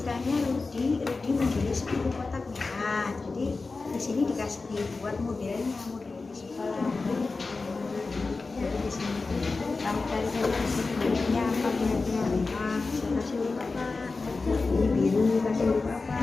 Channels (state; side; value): quieter; right; 3.9 dB